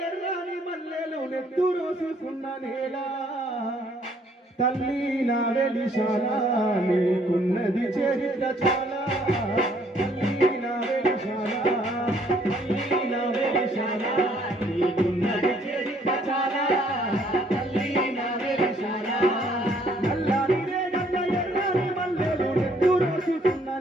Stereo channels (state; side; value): normal; both; correlation 0.64